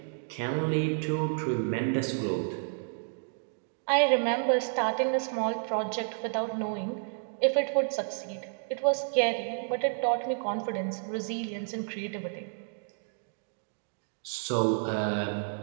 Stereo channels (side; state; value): left; silent; digital silence